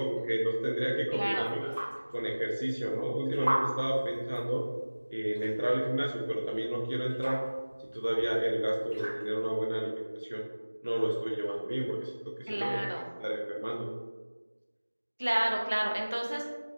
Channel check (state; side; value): inverted; both; correlation -1.00